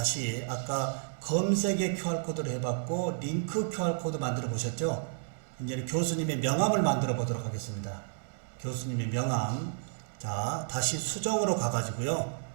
아까 검색의 QR코드를 해봤고 링크 QR코드 만들어 보셨죠? 이제는 교수님의 명함을 만들어 보도록 하겠습니다. 교수님의 명함. 자, 다시 수정으로 가가지고요.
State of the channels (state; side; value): silent; left; digital silence